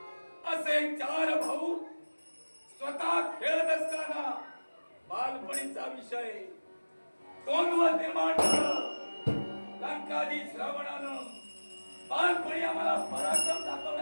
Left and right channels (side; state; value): both; inverted; correlation -1.00